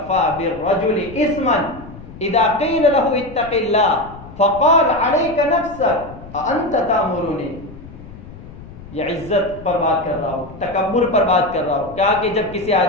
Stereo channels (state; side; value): noise; left; rumble, 16 dB below the sound